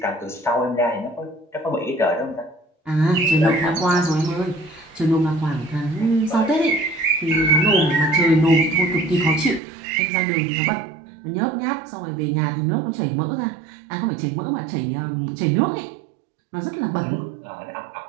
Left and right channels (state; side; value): drops out; left; at 9.6 s